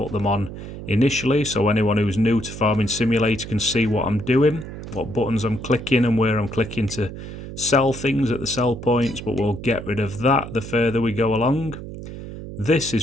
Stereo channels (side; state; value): right; noise; hum, 10 dB below the sound